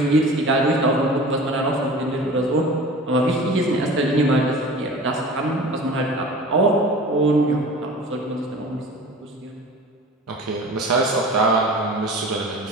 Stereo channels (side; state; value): both; normal; correlation 0.39